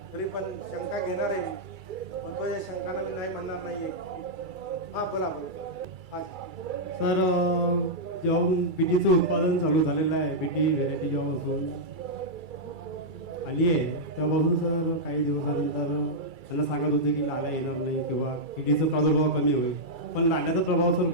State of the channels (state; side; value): late; left; 2.3 ms